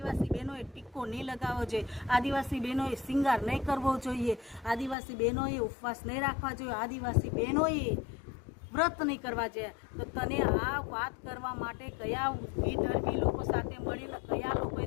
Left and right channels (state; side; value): drops out; right; at 5.0 s